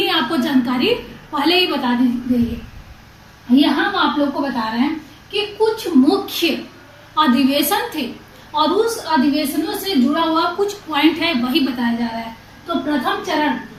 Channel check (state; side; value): identical; both; correlation 1.00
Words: आपको जानकारी पहले ही बता दी गई है। यहाँ हम आप लोग को बता रहे हैं कि कुछ मुख्य अधिवेशन थे और उस अधिवेशनों से जुड़ा हुआ कुछ पॉइंट है वही बताया जा रहा है। तो प्रथम चरण